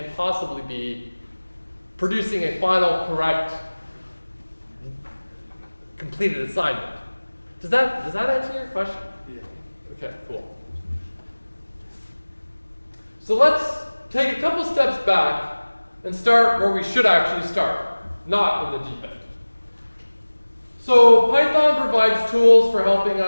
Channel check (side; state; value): both; inverted; correlation -1.00